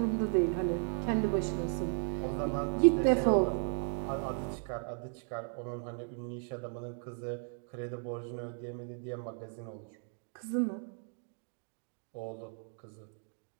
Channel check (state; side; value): silent; left; 54 dB below the other